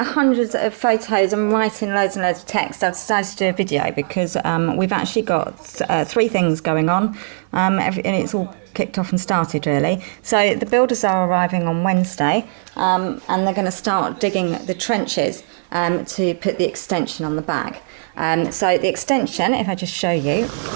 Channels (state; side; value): silent; left; 56 dB below the other